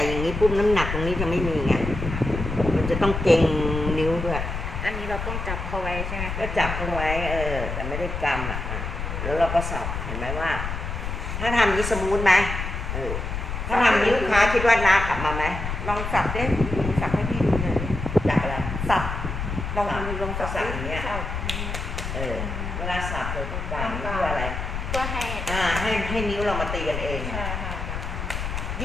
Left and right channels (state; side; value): noise; left; rumble, 4 dB below the sound